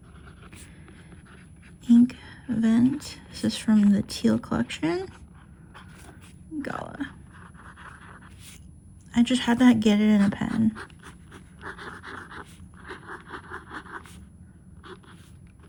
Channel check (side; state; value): both; identical; correlation 1.00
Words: Ink Vent. This is from the Teal collection. Gala. I just had to get it in a pen.